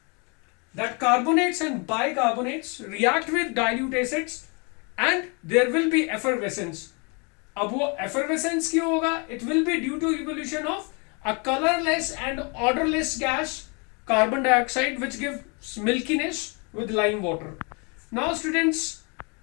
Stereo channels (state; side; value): quieter; right; 32.9 dB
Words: carbonates and bicarbonates react with dilute acids and there will be effervescence. अब वो effervescence क्यों होगा? It will be due to evolution of a colorless and odorless gas, carbon dioxide, which gives milkiness with lime water. Now students,